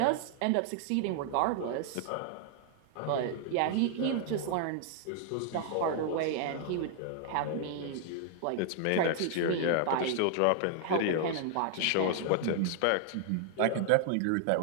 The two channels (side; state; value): both; different; correlation 0.00